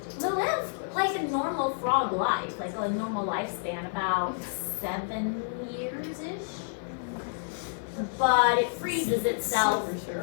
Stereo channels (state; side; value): silent; right; 58 dB below the other